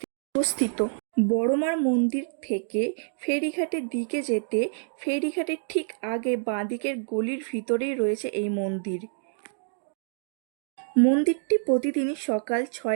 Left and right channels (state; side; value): silent; left; digital silence